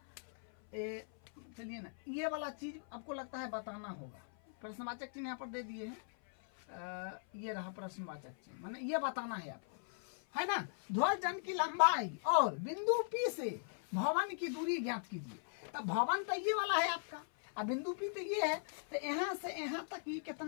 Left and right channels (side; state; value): right; silent; 52 dB below the other